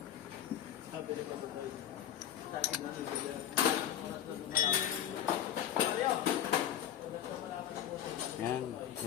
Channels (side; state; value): right; quieter; 10.7 dB